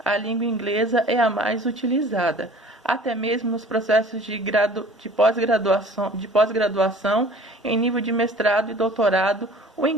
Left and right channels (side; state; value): both; normal; correlation 0.47